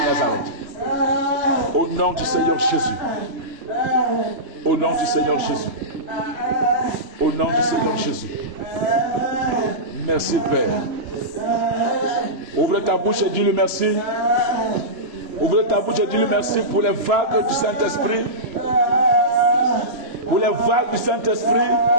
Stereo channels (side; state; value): left; late; 3.0 ms